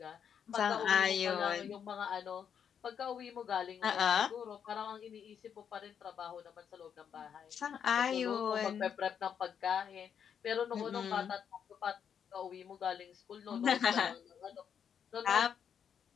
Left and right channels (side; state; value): right; quieter; 7.9 dB